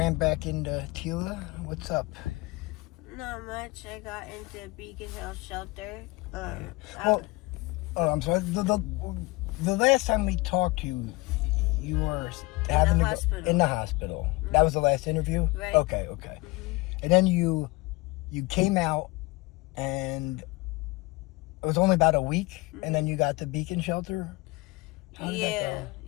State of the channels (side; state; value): right; quieter; 23.5 dB